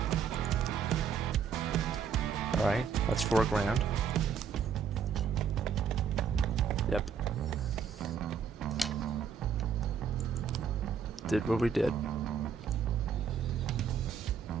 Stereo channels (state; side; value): quieter; left; 6.8 dB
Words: Alright, that's $4 grand. Yep. Did what we did.